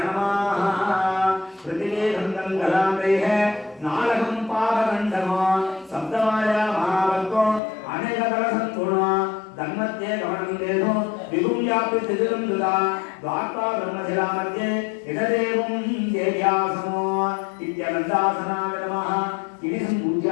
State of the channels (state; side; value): drops out; right; at 7.6 s